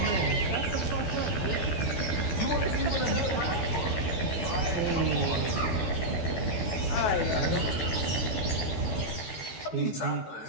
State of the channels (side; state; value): right; late; 13 ms